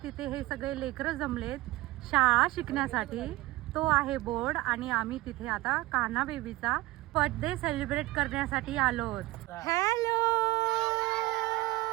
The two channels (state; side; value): quieter; left; 19.3 dB